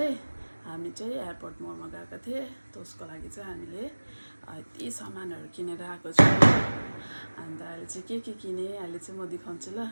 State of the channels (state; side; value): inverted; both; correlation -1.00